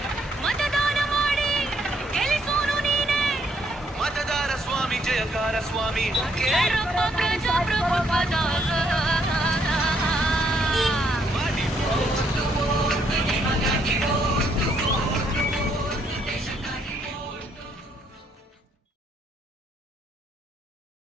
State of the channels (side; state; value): both; normal; correlation 0.71